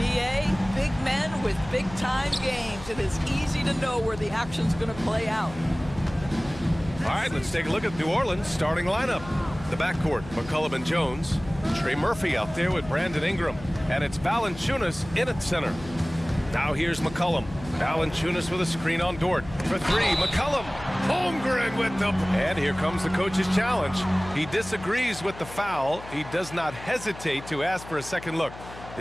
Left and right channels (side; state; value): left; noise; hum, 15 dB below the sound